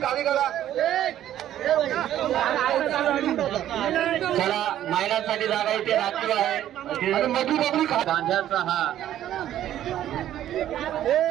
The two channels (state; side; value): quieter; left; 11.9 dB